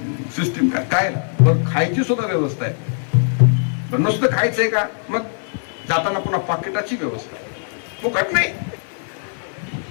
सिस्टीम काय, काय बरं. खायची सुद्धा व्यवस्था आहे. नुसतं खायचंय का, मग जाताना पुन्हा पाकिटाची व्यवस्था आहे. फुकट नाही.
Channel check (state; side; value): silent; right; 59 dB below the other